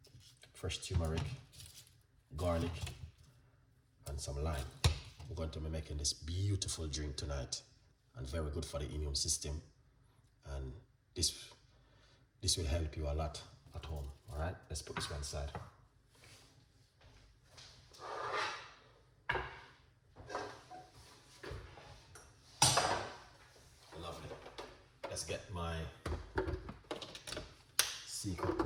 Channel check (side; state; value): both; identical; correlation 1.00